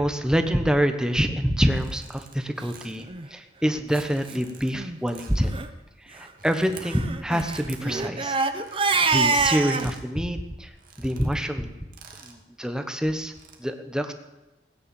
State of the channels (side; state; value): both; normal; correlation 0.64